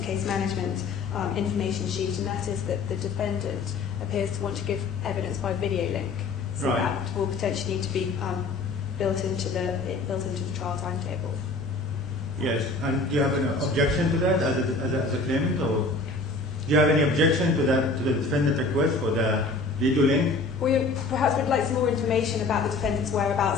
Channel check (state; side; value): quieter; right; 3.6 dB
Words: case management information sheet, and that is that the defendant appears to want to give evidence by video link. So right. That will potentially need to be built into the trial timetable. Yes, and do you have an objection to that as a claimant, or do you have any objection to that, to the defendant request for the video link? We perhaps would like some more information about the defendant's